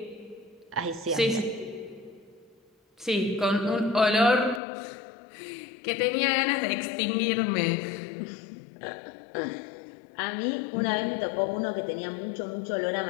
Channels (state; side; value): drops out; right; at 4.6 s